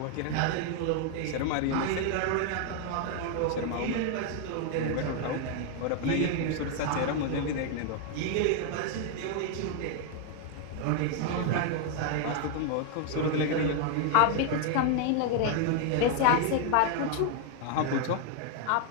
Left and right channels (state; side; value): different; both; correlation 0.00